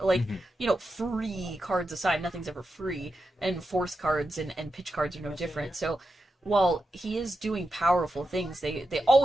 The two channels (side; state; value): both; normal; correlation 0.88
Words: Like, free cards aside, nothing's ever free, and force cards and pitch cards are no different. So while he is doing powerful things, they